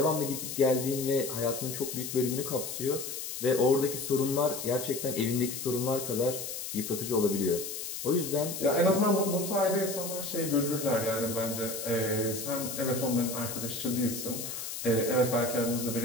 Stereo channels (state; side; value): noise; left; hiss, 6 dB below the sound